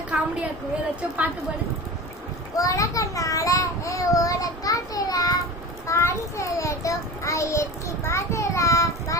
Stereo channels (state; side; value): normal; both; correlation 0.32